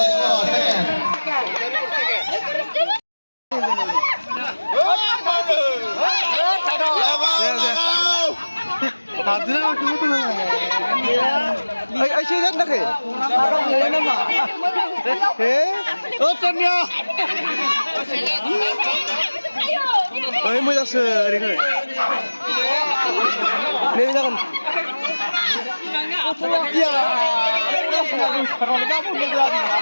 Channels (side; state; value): both; inverted; correlation -1.00